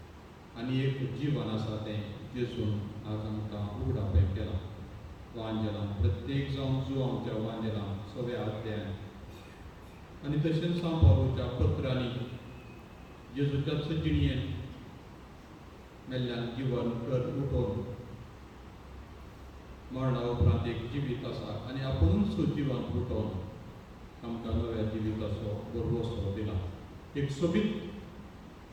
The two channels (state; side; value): identical; both; correlation 1.00